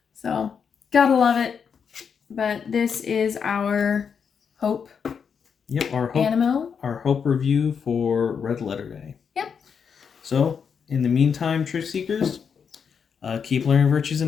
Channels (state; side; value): quieter; right; 6.7 dB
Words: So, gotta love it. But this is our Hope. Yep, our Hope. Animo. Our Hope review for Red Letter Day. Yep. So, in the meantime, Trick Seekers, keep learning virtues